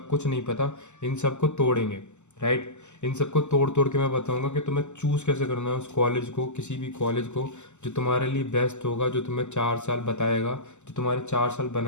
कुछ नहीं पता, इन सबको तोड़ेंगे, राइट? इन सबको तोड़ तोड़ के मैं बताऊंगा कि तुम्हें चूज़ कैसे करना है उस कॉलेज को, किसी भी कॉलेज को जो तुम्हारे लिए बेस्ट होगा, जो तुम्हें 4 साल बताएगा, जो तुम्हारे 4 साल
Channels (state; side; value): late; right; 0.83 ms